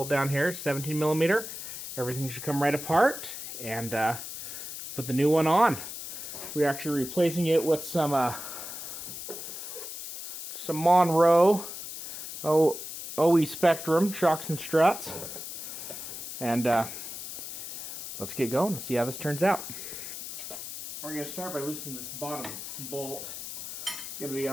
down here, 17mm. Everything should come right apart and put the new one on. We're actually replacing it with some Monroe OE Spectrum shocks and struts. And let's get going and see how this turns out. We're going to start by loosening this bottom bolt. It's going to be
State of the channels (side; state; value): left; noise; hiss, 9 dB below the sound